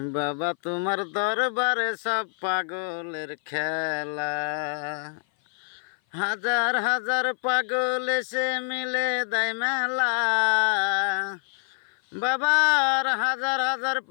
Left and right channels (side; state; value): right; silent; 56 dB below the other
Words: বাবা তোমার দরবারে সব পাগলের খেলা। হাজার হাজার পাগল এসে মিলে দেয় মেলা। বাবার হাজার হাজার